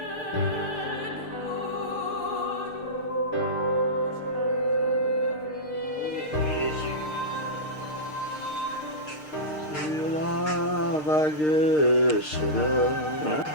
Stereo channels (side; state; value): right; late; 6.6 ms